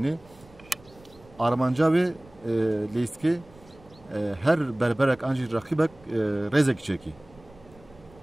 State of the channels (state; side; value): noise; right; rumble, 25 dB below the sound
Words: Armanca wê leyskê her berberek an jî raqîbek rêzekî çekî.